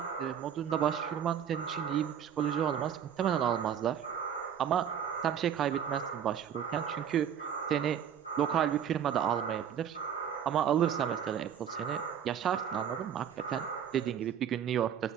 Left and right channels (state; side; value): quieter; left; 8.8 dB